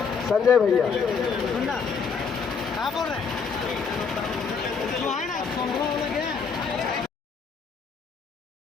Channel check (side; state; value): right; quieter; 5.7 dB